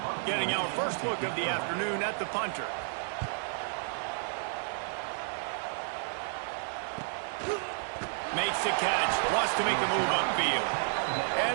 Getting our first look of the afternoon at the punter. Makes the catch, wants to make a move upfield.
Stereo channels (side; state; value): left; silent; digital silence